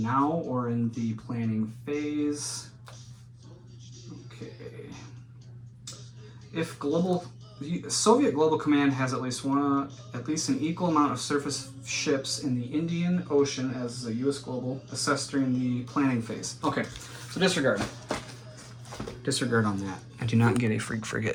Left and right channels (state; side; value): identical; both; correlation 1.00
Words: or in the planning phase. Okay. If Soviet Global Command has at least an equal amount of surface ships in the Indian Ocean as the U.S. Global assessed during the planning phase. Okay, so disregard. Disregard on that. I do not get a freak